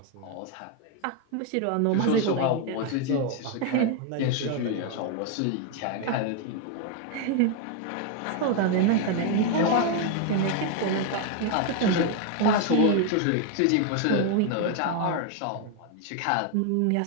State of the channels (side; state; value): both; different; correlation 0.01